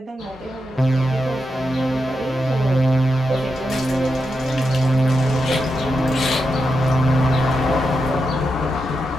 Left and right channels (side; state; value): both; normal; correlation 0.86